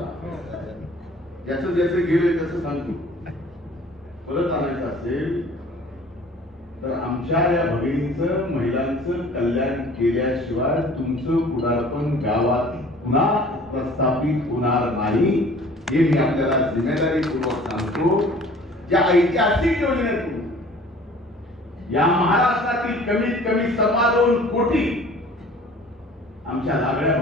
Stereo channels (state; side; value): normal; both; correlation 0.49